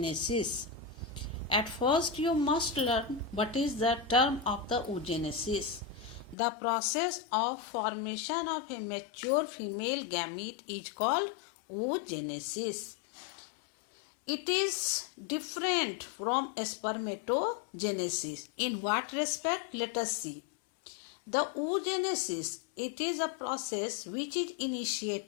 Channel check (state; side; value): drops out; right; at 6.4 s